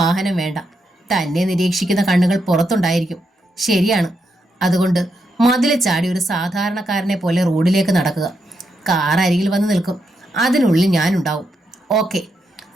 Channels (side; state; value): both; normal; correlation 0.82